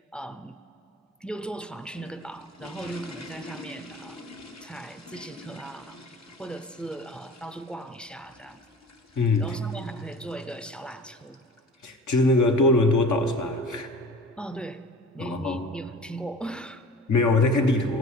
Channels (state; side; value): normal; both; correlation 0.39